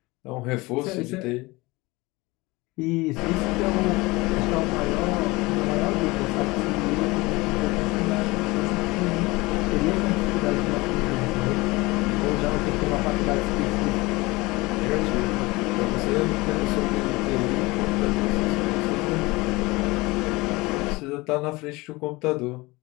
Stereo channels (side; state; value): right; quieter; 22.5 dB